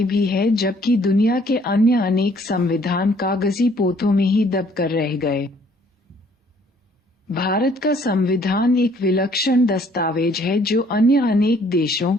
भी है, जबकि दुनिया के अन्य अनेक संविधान कागजी पोथों में ही दबकर रह गए। भारत का संविधान एक विलक्षण दस्तावेज है जो अन्य अनेक देशों,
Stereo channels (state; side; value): normal; both; correlation 0.61